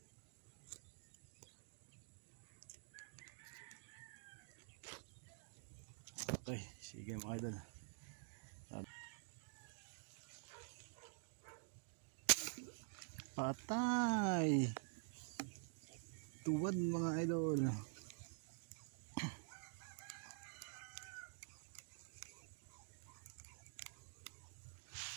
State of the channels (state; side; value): silent; left; digital silence